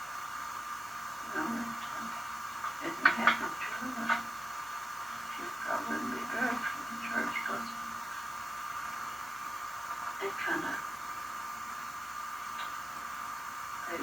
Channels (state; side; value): normal; both; correlation 0.94